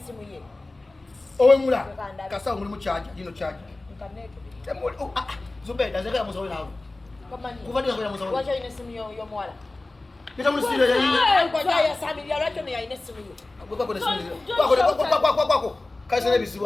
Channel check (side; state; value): right; quieter; 3.0 dB